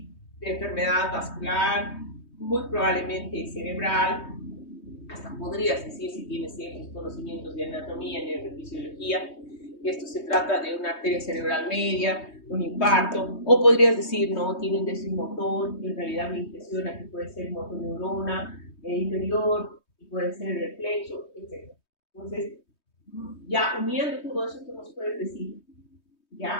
de enfermedad vascular, muy probablemente cerebral, hasta podrías decir si tienes ciertos conocimientos de anatomía, neurofisiología, que esto se trata de una arteria cerebral media, un infarto, o podrías decir, no, tiene un déficit motor, en realidad me impresiona que puede ser motoneurona inferior, y puede ser reflexo, etc. Entonces, ya uniendo todo eso, tú nos puedes decir,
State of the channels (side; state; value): right; late; 3.2 ms